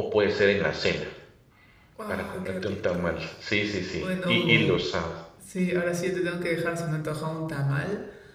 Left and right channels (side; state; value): both; identical; correlation 1.00